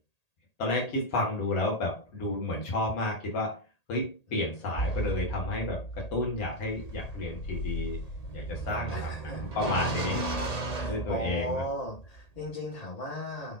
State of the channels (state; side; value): late; right; 1.8 ms